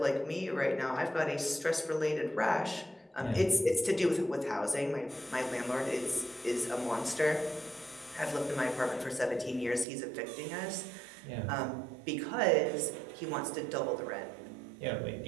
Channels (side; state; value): left; drops out; at 9.9 s